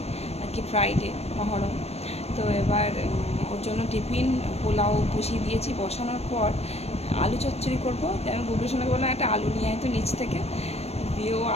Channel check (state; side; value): late; right; 0.31 ms